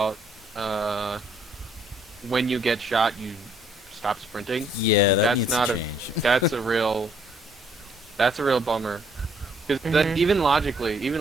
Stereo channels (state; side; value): normal; both; correlation 0.65